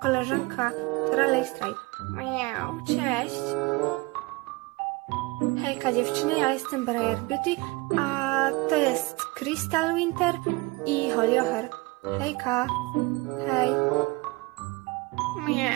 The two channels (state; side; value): quieter; left; 24.0 dB